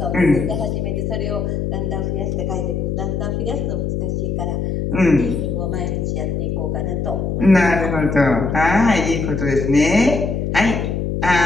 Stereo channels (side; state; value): left; noise; hum, 1 dB below the sound